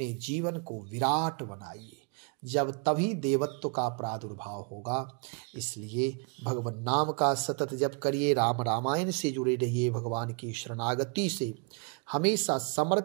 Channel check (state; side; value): quieter; left; 36.7 dB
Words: जीवन को विराट बनाइए, जब तभी देवत्व का प्रादुर्भाव होगा। इसलिए भगवान नाम का सतत जप करिए, राम रामायण से जुड़े रहिए, भगवान की शरणागति से हमेशा